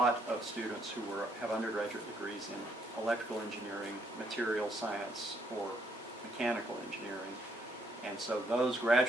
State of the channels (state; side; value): normal; both; correlation 0.71